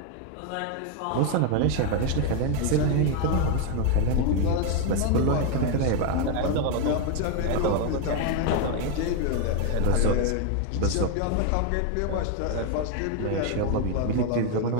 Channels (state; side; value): different; both; correlation 0.01